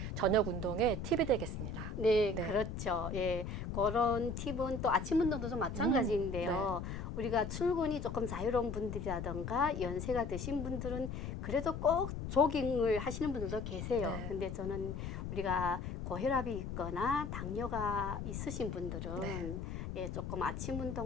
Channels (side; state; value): left; noise; rumble, 5 dB below the sound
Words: 저녁 운동의 팁이 되겠습니다. 네, 네. 그렇죠. 예, 그런 팁은 또 아침 운동도 좀 마찬가지인데요. 우리가 출근이 조금 자유로운 분들이라던가 연세가 드신 분들은 그래도 꼭 조깅을 하시는 분들도 계세요. 네. 근데 저는 우리가 고혈압이 있거나 당뇨가 있으신 분들은 네. 예, 조금 아침